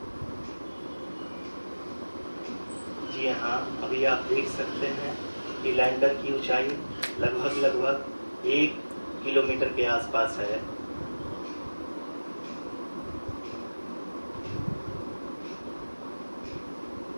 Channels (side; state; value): both; inverted; correlation -1.00